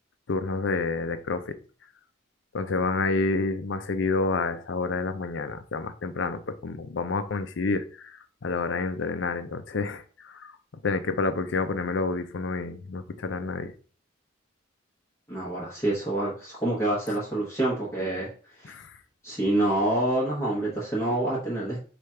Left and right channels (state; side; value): normal; both; correlation 0.30